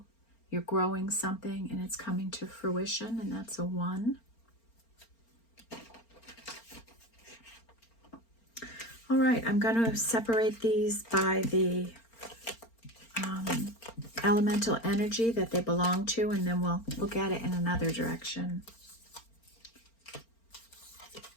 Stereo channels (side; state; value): right; late; 4.4 ms